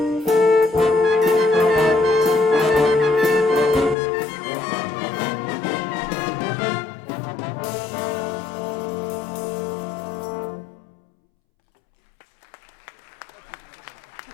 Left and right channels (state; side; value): drops out; right; at 4.0 s